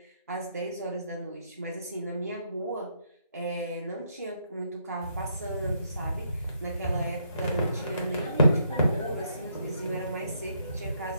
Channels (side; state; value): both; inverted; correlation -0.74